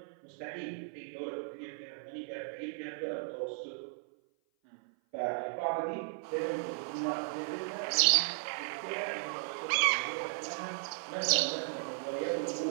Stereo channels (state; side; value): silent; left; 54 dB below the other